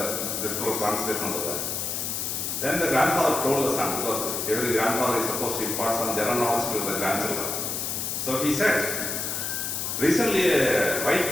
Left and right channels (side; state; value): left; noise; hiss, 2 dB below the sound